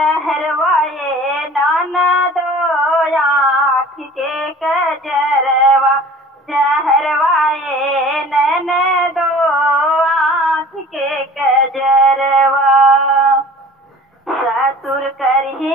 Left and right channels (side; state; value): both; normal; correlation 0.45